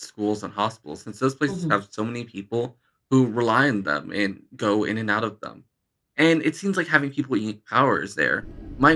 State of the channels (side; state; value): both; identical; correlation 1.00